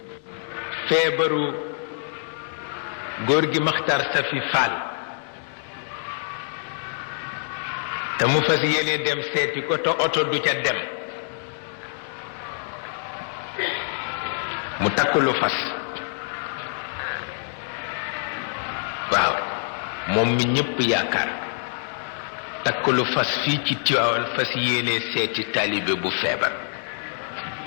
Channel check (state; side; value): silent; right; 61 dB below the other